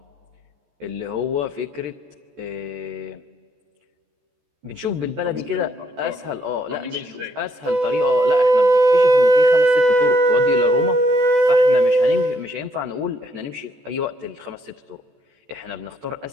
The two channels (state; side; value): late; left; 14 ms